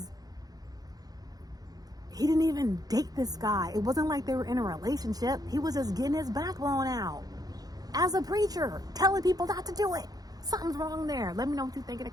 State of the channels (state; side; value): late; left; 0.19 ms